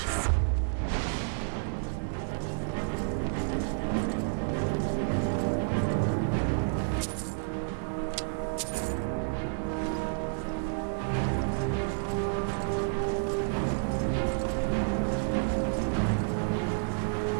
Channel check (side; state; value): left; silent; digital silence